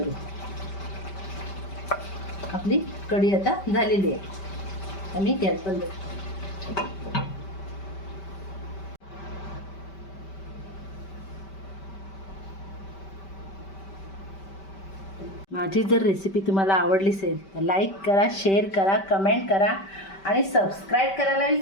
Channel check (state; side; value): late; right; 5.2 ms